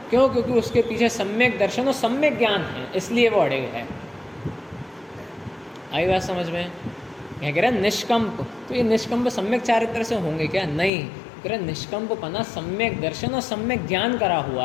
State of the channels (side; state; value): right; drops out; at 10.9 s